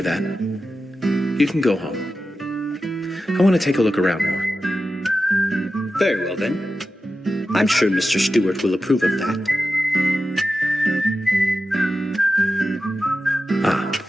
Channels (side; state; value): both; normal; correlation 0.92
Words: that. You can go home. I want to take a look around more. Very well, then. I'm sure Mr. Stewart will approve of that. Ah,